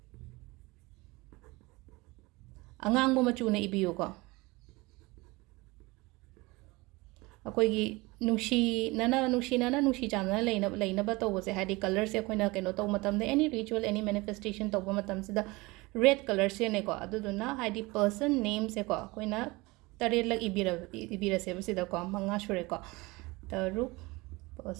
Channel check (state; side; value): quieter; left; 23.1 dB